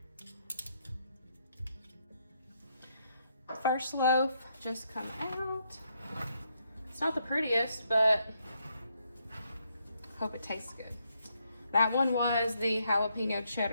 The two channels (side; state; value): both; inverted; correlation -0.76